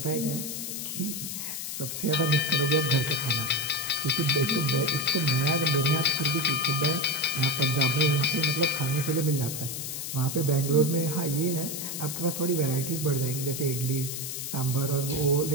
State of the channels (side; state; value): left; noise; hiss, 5 dB below the sound